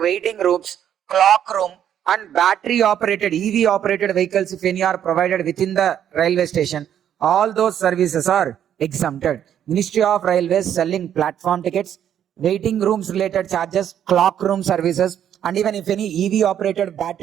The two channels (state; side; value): quieter; left; 9.8 dB